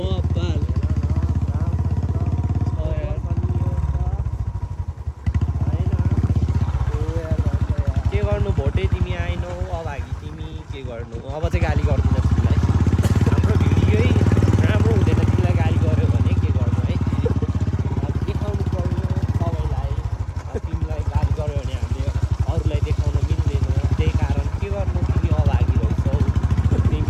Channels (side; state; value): both; identical; correlation 1.00